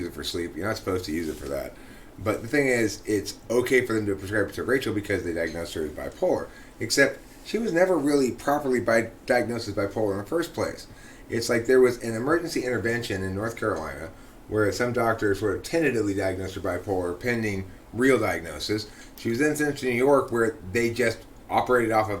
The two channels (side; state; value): both; identical; correlation 1.00